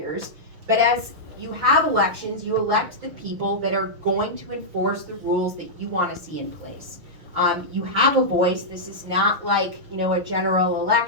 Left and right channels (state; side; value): late; left; 6.2 ms